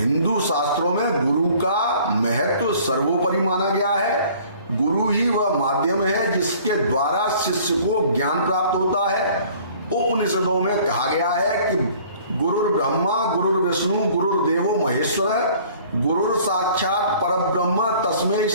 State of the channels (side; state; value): both; inverted; correlation -0.53